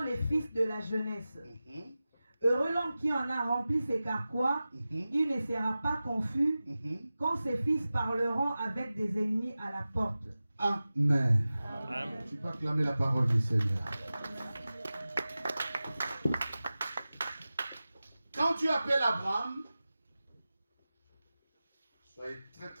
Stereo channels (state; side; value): inverted; both; correlation -0.96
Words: les fils de la jeunesse. Heureux l'homme qui en a rempli ses carquois, il ne sera pas confus quand ses fils parleront avec des ennemis à la porte. Amen. Amen. Tu peux acclamer la parole du Seigneur. Quand tu appelles Abraham, soyez très